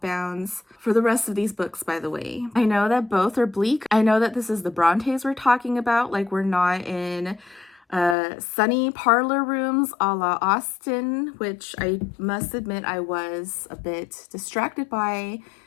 for the rest of these books, by the way. I know that both are bleak. I know that this is the Brontes we're talking about. Like, we're not in sunny parlor rooms a la Austen, which I must admit I was a bit distracted by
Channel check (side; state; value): right; drops out; at 8.2 s